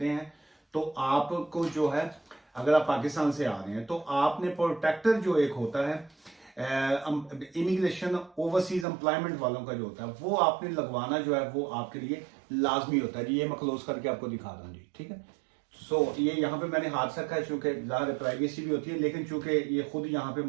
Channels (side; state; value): left; drops out; at 8.8 s